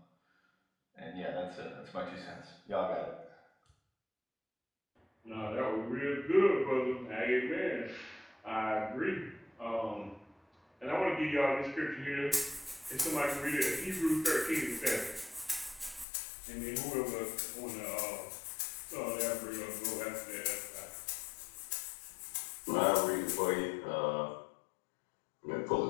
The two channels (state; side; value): drops out; right; at 16.1 s